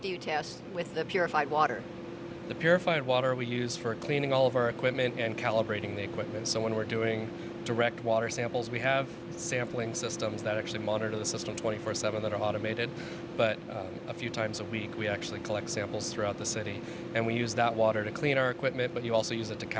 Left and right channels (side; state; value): both; identical; correlation 1.00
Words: you test with the purified water? The purified water we use for cleaning all of our equipment and calibrating the equipment. So when we're doing direct water samples, we have sampling systems that actually monitor the system 24/7 that are automated, but a few times a week we actually collect samples throughout the city, and we use that water to clean our equipment, but you also use it to